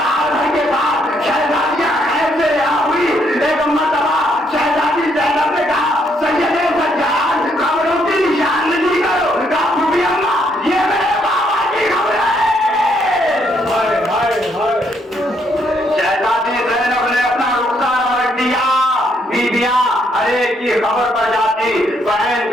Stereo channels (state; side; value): normal; both; correlation 0.72